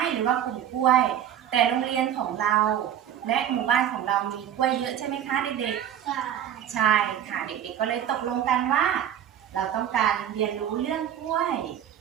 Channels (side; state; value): left; quieter; 10.2 dB